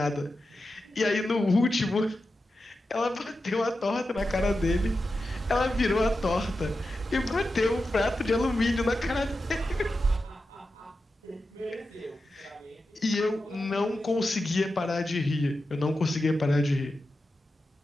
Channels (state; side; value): normal; both; correlation 0.91